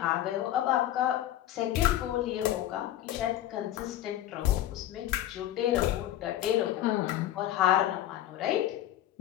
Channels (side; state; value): right; quieter; 13.0 dB